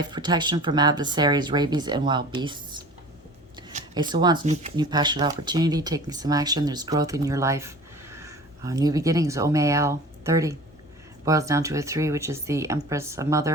protection from adversaries, rabies, and wild beasts. Ace of Wands, new passionate opportunity, taking some action. There's growth in your life. New beginnings, Omeal, 30. Boils down to a 3, which is the Empress, a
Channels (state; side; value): normal; both; correlation 0.42